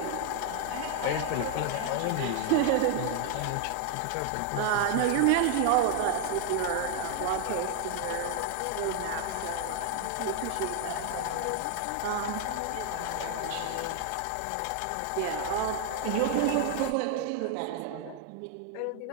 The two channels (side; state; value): both; different; correlation 0.00